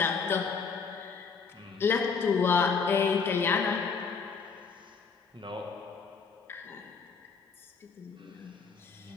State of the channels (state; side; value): quieter; right; 5.4 dB